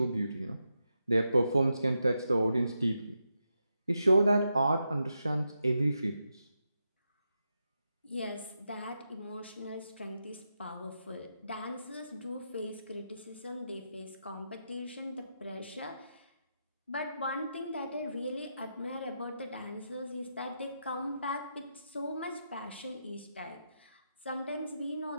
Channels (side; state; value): both; inverted; correlation -0.85